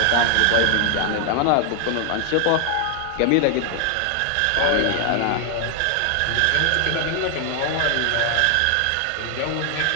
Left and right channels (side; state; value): both; different; correlation 0.00